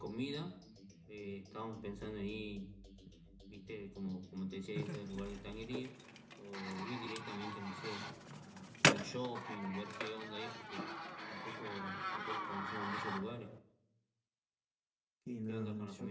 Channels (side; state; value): both; identical; correlation 1.00